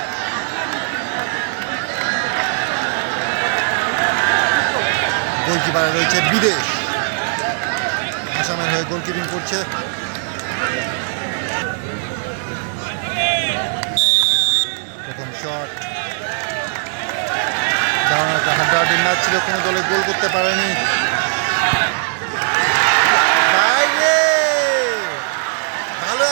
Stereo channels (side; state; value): left; silent; digital silence